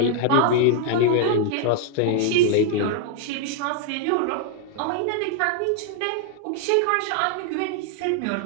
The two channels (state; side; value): different; both; correlation 0.00